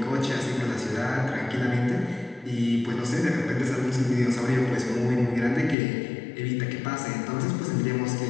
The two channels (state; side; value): drops out; right; at 5.8 s